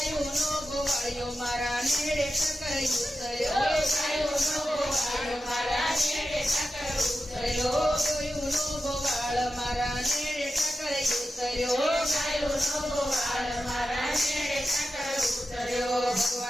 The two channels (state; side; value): normal; both; correlation 0.91